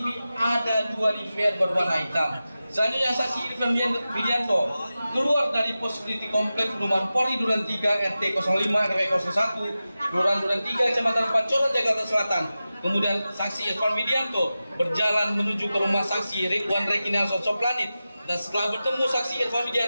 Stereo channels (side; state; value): both; inverted; correlation -0.94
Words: ada 2 DVR berwarna hitam. Selanjutnya saksi Irfan Widianto keluar dari pos security Komplek Perumahan Polri Duren 3, RT 05 RW 01, Kelurahan Duren 3, Kecamatan Pancoran, Jakarta Selatan. Kemudian saksi Irfan Widianto berjalan menuju ke rumah saksi Ridwan Rekinelson Soplanit. Dan setelah bertemu saksi Irfan